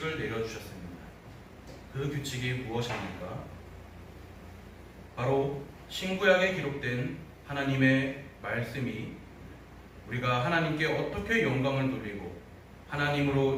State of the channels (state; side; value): identical; both; correlation 1.00